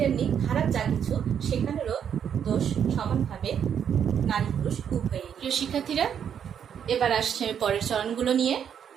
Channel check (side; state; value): left; quieter; 8.4 dB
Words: খারাপ যা কিছু সেখানেরও দোষ সমানভাবে নারী পুরুষ উভয়ই। প্রিয় শিক্ষার্থীরা, এবার আসছে পরের চরণগুলো নিয়ে।